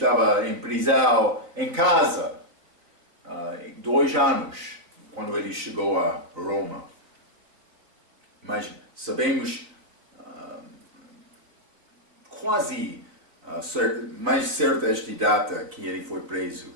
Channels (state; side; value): late; left; 4.0 ms